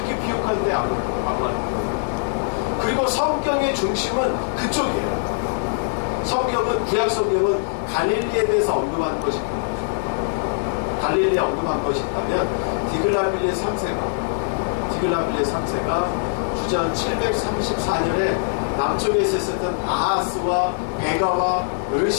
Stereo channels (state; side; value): silent; right; digital silence